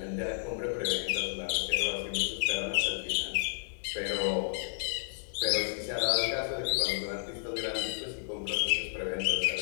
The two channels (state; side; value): silent; right; 57 dB below the other